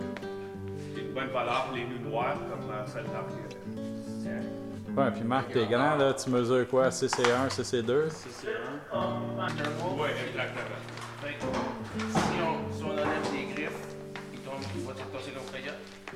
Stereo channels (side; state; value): both; identical; correlation 1.00